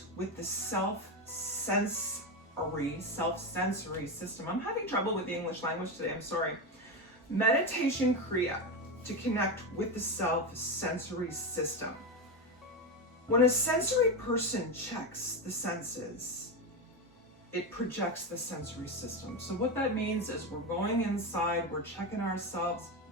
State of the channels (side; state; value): both; normal; correlation 0.14